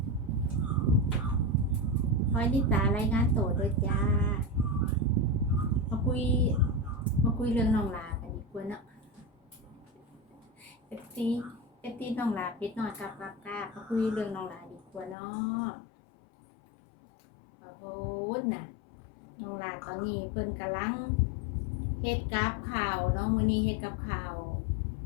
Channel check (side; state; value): right; drops out; at 15.2 s